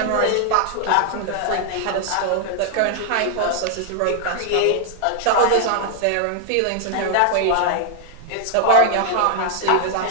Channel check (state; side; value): different; both; correlation -0.01